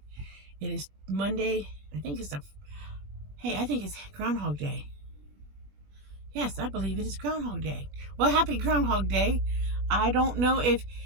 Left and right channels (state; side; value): late; left; 21 ms